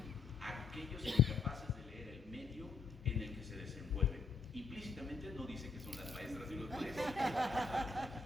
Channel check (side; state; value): right; quieter; 4.6 dB